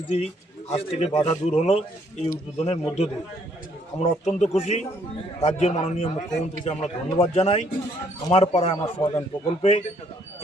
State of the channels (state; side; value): normal; both; correlation 0.67